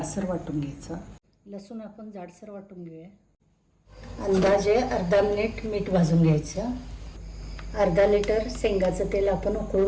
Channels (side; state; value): both; identical; correlation 1.00